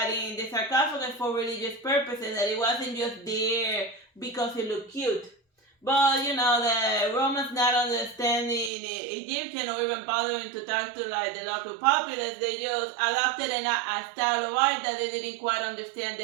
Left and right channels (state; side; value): drops out; left; at 8.7 s